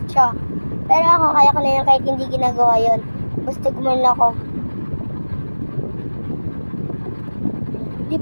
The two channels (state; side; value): inverted; both; correlation -1.00